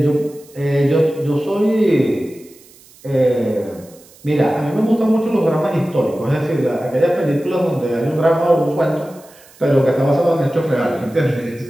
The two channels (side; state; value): right; noise; hiss, 25 dB below the sound